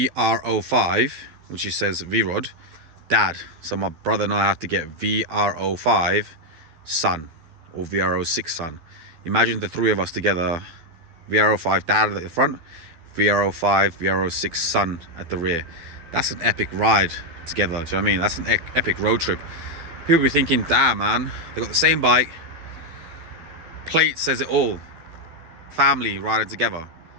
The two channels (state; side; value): late; left; 12 ms